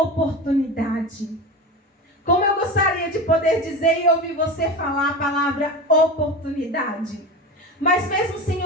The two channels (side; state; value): both; normal; correlation 0.26